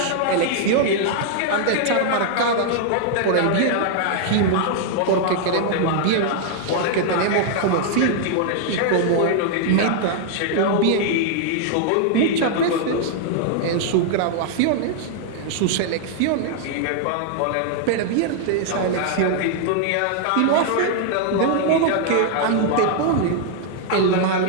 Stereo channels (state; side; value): different; both; correlation 0.00